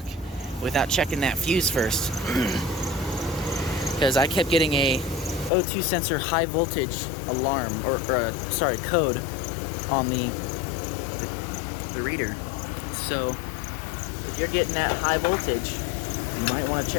without checking that fuse first. Because I kept getting a O2 sensor high voltage alarm, or code on the reader. So if you're getting that high voltage, you might want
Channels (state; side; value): drops out; right; at 5.5 s